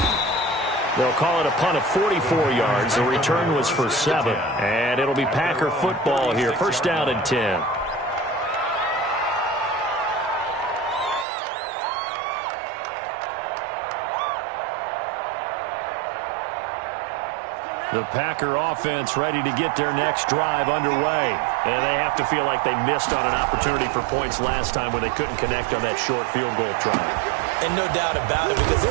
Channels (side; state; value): left; drops out; at 11.2 s